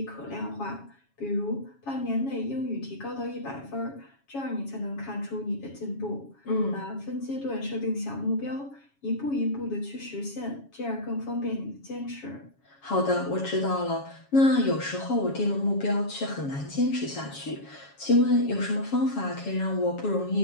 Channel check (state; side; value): late; right; 7.2 ms